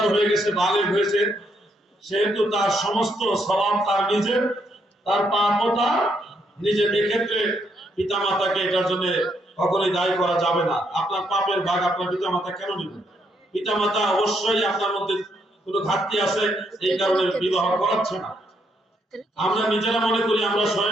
হয়ে গেছে, বালেগ হয়েছে, সেহেতু তার সমস্ত স্বভাব তার নিজের, তার পাপও তার নিজের। এক্ষেত্রে পিতা মাতাকে এটার জন্য কখনোই দায়ী করা যাবে না। আপনার পাপের ভাগ আপনার পিতা মাতা কেন নেবেন? পিতা মাতা অবশ্যই আপনার মধ্যে কোনো ঘাটতি আছে, এই কারণে বিবাহ করাচ্ছে না। আমরা নিজেরা মনে করি আমরা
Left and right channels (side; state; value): both; normal; correlation 0.75